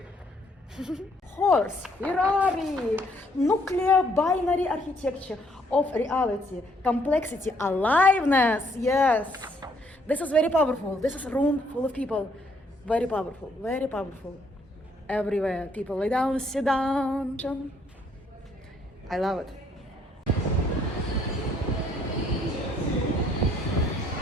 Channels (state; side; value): normal; both; correlation 0.67